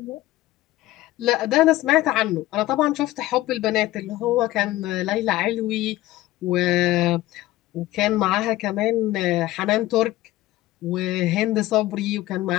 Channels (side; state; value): right; quieter; 16.3 dB